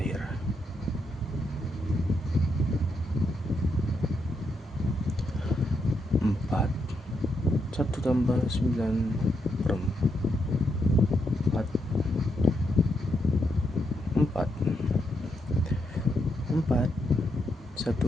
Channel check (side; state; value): both; normal; correlation 0.80